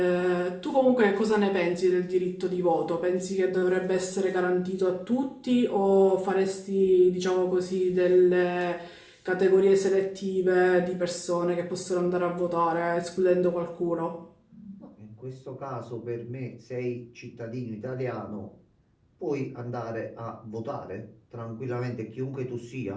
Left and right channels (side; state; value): both; identical; correlation 1.00